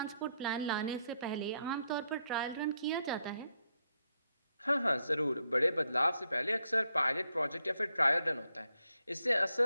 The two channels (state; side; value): inverted; both; correlation -0.78